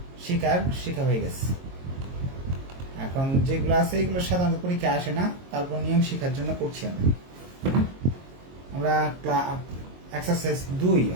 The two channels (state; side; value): late; left; 22 ms